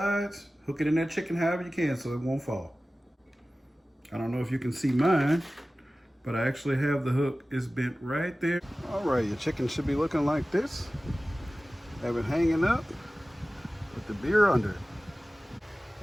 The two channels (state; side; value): normal; both; correlation 0.96